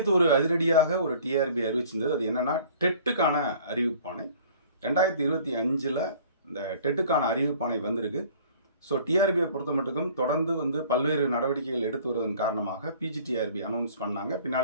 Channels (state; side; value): inverted; both; correlation -0.51